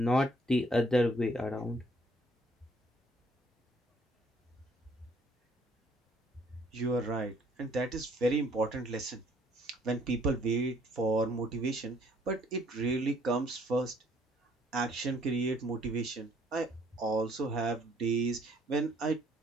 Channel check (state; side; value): normal; both; correlation 0.63